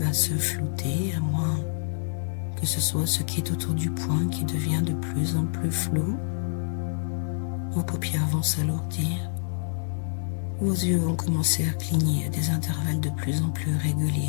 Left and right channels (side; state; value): right; silent; 60 dB below the other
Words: se flouter, à moins que ce soit ce qui est autour du point qui devient de plus en plus flou. Vos paupières vont s'alourdir. Vos yeux vont commencer à cligner à des intervalles de plus en plus